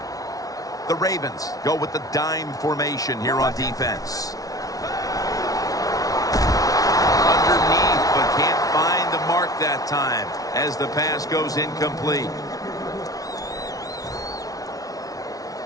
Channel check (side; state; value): right; late; 0.18 ms